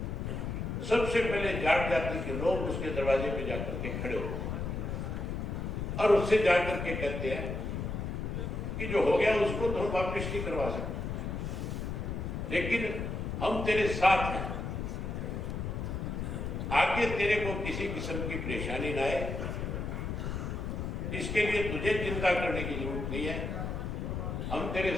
सबसे पहले जाट जाति के लोग उसके दरवाजे पे जाकर के खड़े होते हैं और उससे जाकर के कहते हैं कि जो हो गया उसको तो हम वापिस नहीं करवा सकते, लेकिन हम तेरे साथ हैं, आगे तेरे को किसी किस्म की परेशानी ना आए, इसके लिए तुझे चिंता करने की जरूरत नहीं है। हम तेरे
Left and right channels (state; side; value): noise; left; rumble, 3 dB below the sound